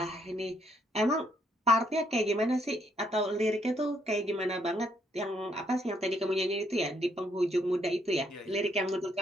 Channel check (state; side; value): normal; both; correlation 0.71